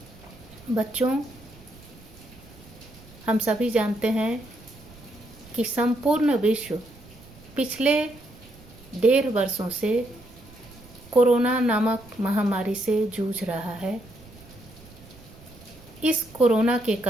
बच्चों, हम सभी जानते हैं कि संपूर्ण विश्व पिछले 1.5 वर्षों से कोरोना नामक महामारी से जूझ रहा है। इस कोरोना के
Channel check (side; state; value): right; noise; rumble, 22 dB below the sound